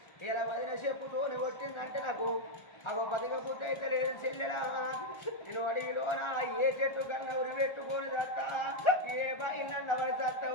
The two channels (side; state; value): right; late; 1.4 ms